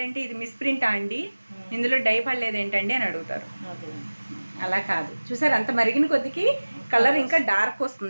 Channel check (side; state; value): both; inverted; correlation -1.00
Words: ఇది మిస్ప్రింటా అండి, ఇందులో డై పడలేదు ఏంటండి అని అడుగుతారు. అలా కాదు. చూసారా అంత మరిగిన కొద్దికి కలర్ ఇంకా డార్క్